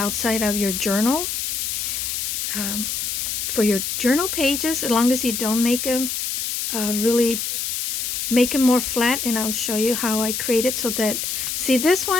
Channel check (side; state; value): left; noise; hiss, 2 dB below the sound